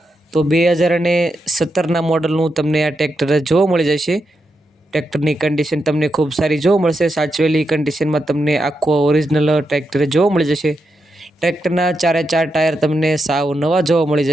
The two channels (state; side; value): normal; both; correlation 0.85